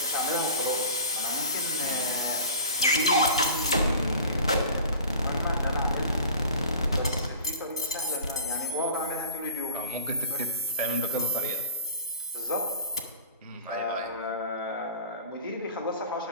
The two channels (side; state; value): both; inverted; correlation -0.42